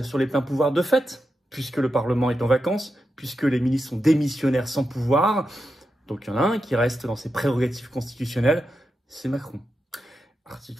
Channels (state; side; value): normal; both; correlation 0.88